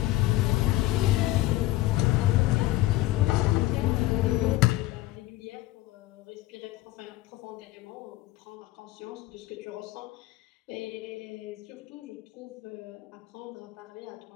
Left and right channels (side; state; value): right; quieter; 16.8 dB